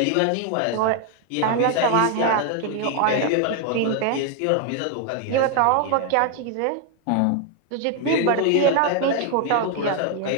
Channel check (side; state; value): both; different; correlation 0.00